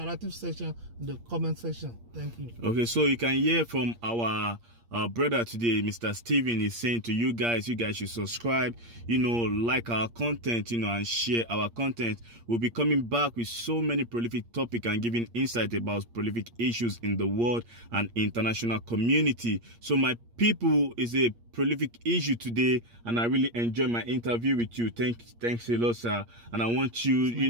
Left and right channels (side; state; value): left; late; 8.6 ms